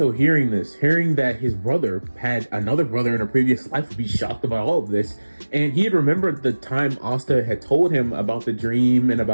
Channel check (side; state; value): both; inverted; correlation -1.00